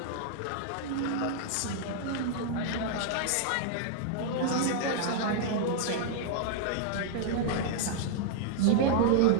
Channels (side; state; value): both; different; correlation -0.01